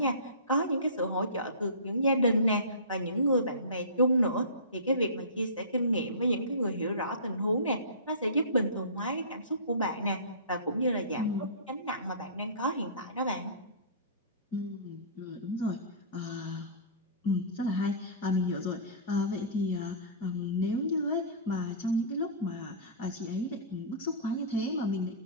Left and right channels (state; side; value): inverted; both; correlation -0.34